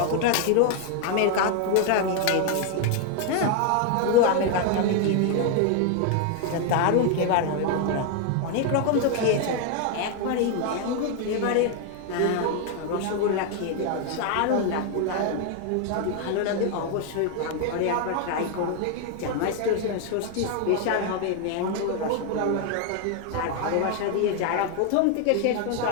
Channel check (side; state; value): both; different; correlation 0.01